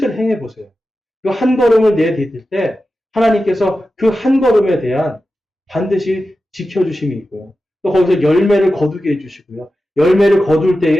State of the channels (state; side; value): normal; both; correlation 0.92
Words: 행해 보세요. 그 한 걸음을 내디딜 때 하나님께서 그 한 걸음에 대한 반드시 지켜주심이 있고요. 또 거기서 열매를 거두게 해주시고요. 열매를 거둘